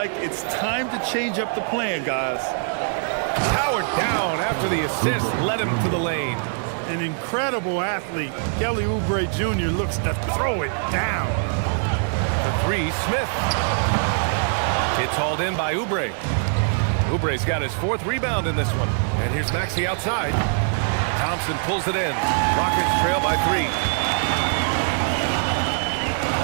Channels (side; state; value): left; silent; 63 dB below the other